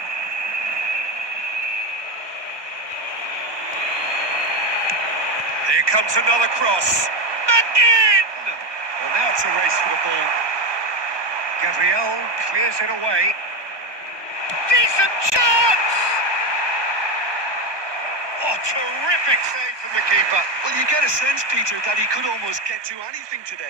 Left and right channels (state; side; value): late; left; 1.2 ms